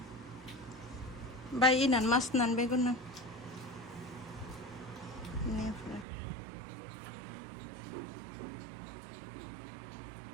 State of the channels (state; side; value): drops out; left; at 6.1 s